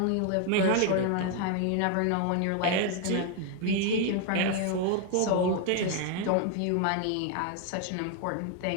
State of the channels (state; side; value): different; both; correlation 0.01